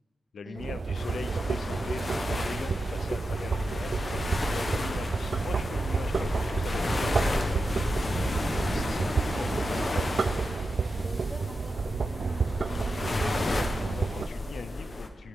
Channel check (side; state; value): both; normal; correlation 0.90